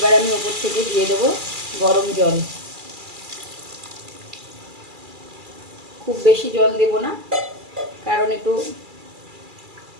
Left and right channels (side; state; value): left; late; 2.3 ms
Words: আমি ওপর থেকে দিয়ে দেবো গরম জল। খুব বেশি জল দেব না, কারণ একটু